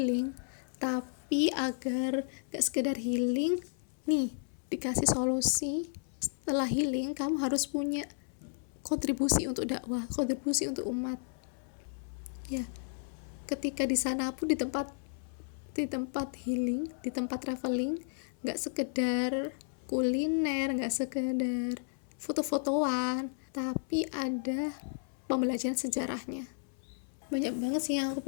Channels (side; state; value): right; silent; 56 dB below the other